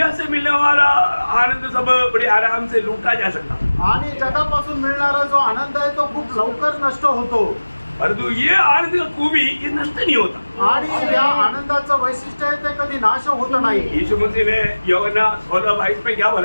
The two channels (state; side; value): inverted; both; correlation -1.00